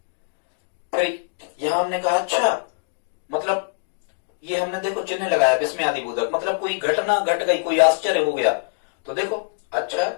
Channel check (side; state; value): right; silent; digital silence